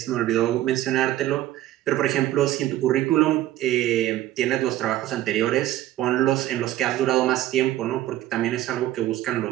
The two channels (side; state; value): left; quieter; 14.3 dB